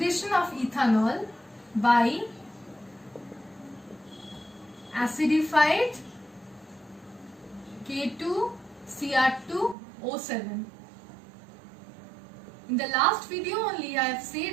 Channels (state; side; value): drops out; left; at 9.8 s